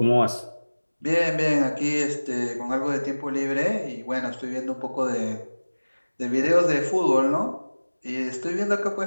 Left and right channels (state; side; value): inverted; both; correlation -1.00